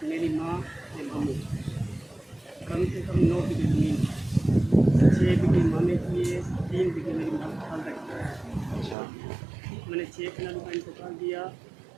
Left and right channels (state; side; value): drops out; left; at 9.0 s